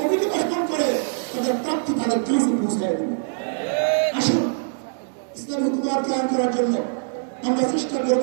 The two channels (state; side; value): silent; left; digital silence